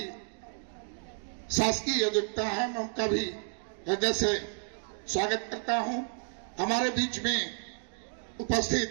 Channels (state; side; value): silent; left; digital silence